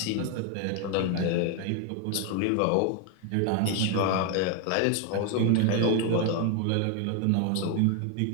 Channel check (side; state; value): both; different; correlation 0.01